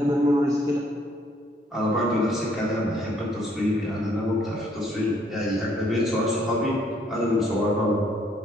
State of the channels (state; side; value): normal; both; correlation 0.66